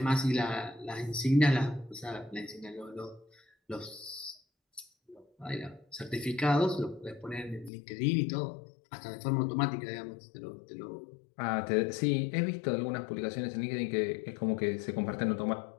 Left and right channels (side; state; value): right; drops out; at 7.7 s